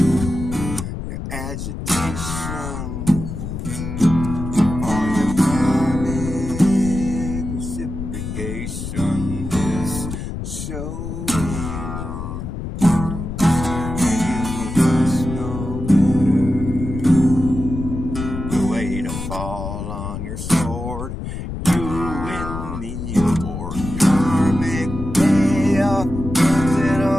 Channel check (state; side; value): noise; left; rumble, 6 dB below the sound